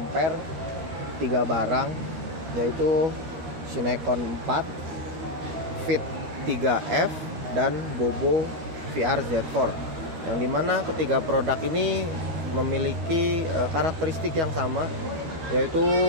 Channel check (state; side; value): late; left; 13 ms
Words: 3 barang, yaitu Cinecon 4, Fit 3F, dan Bobo VR Z4. Yang dimana ketiga produk ini memiliki karakteristik yang sama, yaitu